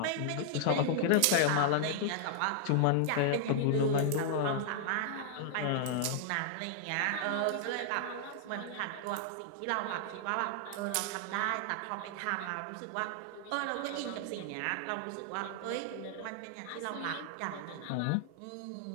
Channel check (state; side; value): different; both; correlation -0.01